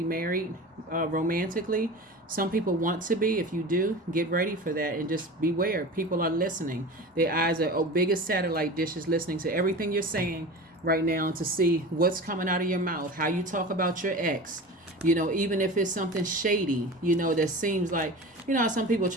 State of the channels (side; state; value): both; normal; correlation 0.33